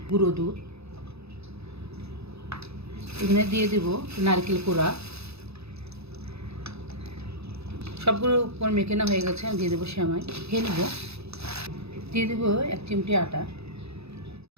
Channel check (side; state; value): left; late; 0.79 ms